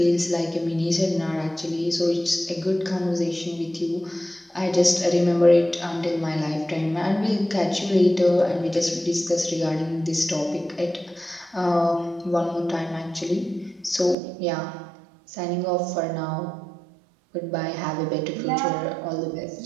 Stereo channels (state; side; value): drops out; left; at 14.2 s